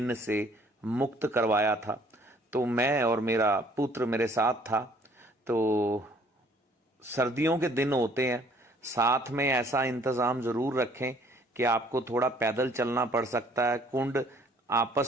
से मुक्त करवाया था। तो मैं और मेरा पुत्र मेरे साथ था। तो सर्दियों के दिन होते हैं, साथ में ऐसा इंतजाम जरूर रखें कि आपको थोड़ा पैदल चलना पड़ सकता है। कुंड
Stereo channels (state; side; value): normal; both; correlation 0.59